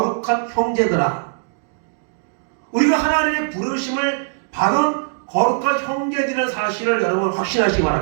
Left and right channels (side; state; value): left; silent; digital silence